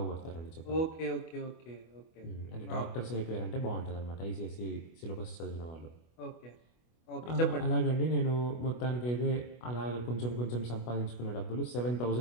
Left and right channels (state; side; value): late; right; 25 ms